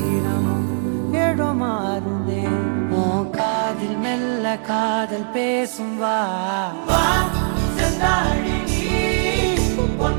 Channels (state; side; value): silent; left; 65 dB below the other